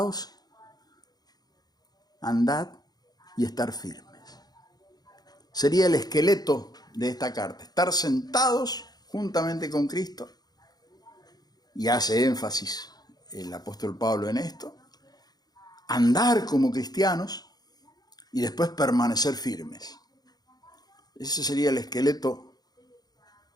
andad y estar firmes. Sería el esqueleto de esta carta: estar sentados juntamente con Cristo, y hace énfasis el apóstol Pablo en esto, andar como cristianos y después permanecer firmes. Ese sería el esqueleto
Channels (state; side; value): late; right; 0.19 ms